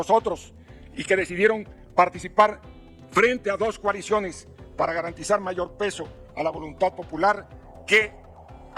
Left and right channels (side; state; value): both; identical; correlation 1.00